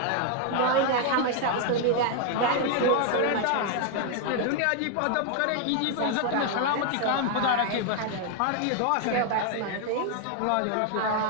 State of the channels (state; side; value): different; both; correlation 0.00